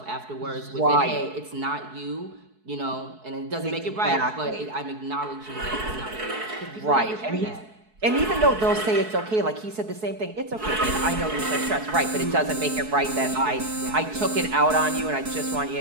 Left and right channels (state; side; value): late; left; 4.6 ms